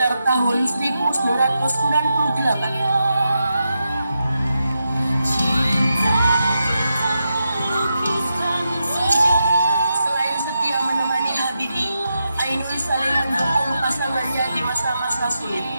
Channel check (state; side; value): inverted; both; correlation -0.87